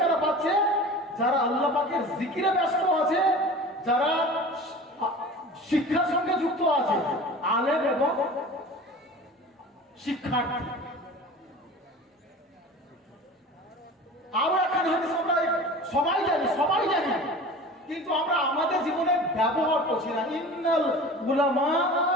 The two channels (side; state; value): both; normal; correlation 0.38